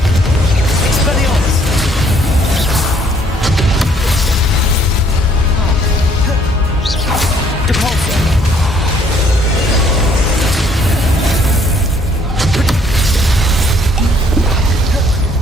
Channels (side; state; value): both; normal; correlation 0.63